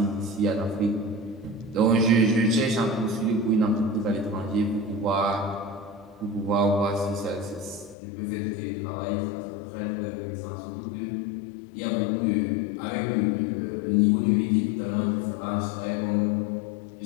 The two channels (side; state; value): right; drops out; at 8.0 s